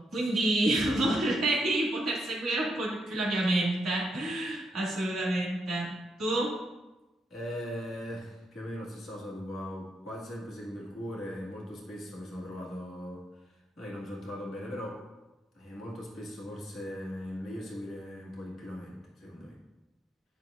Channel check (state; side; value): normal; both; correlation 0.80